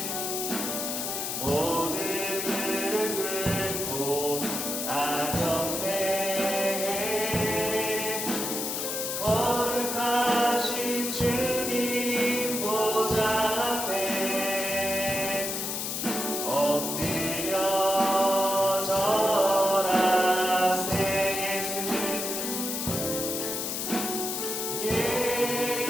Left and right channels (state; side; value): noise; left; hiss, 2 dB below the sound